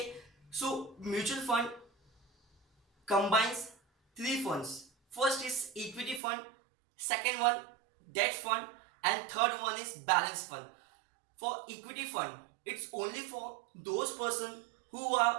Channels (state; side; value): drops out; left; at 6.2 s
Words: so mutual fund combines three funds. First is equity fund, second one debt fund, and third one is balance fund. For equity fund, it's only for those persons who